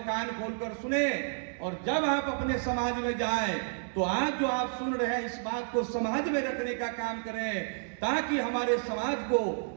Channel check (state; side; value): silent; left; digital silence